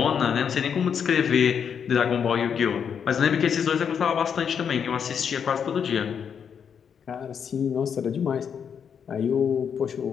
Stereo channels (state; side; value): quieter; right; 7.4 dB